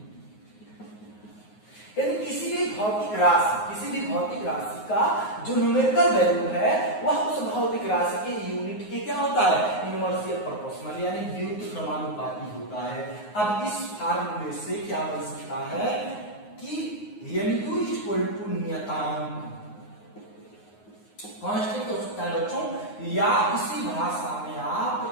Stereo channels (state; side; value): late; right; 9.5 ms